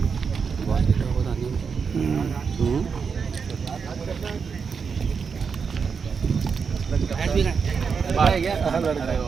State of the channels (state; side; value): quieter; left; 5.8 dB